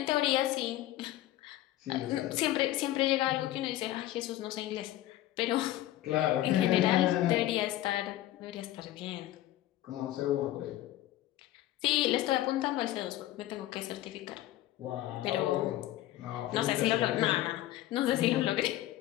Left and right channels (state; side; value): quieter; right; 14.7 dB